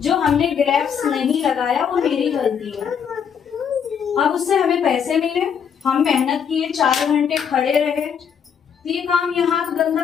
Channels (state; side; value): quieter; right; 7.4 dB